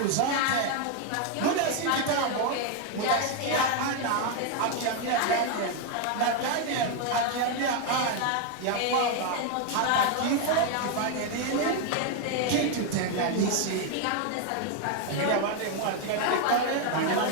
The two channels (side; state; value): both; different; correlation 0.01